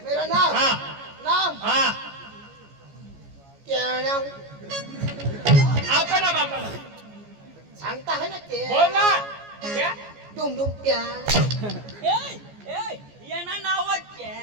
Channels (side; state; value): left; late; 14 ms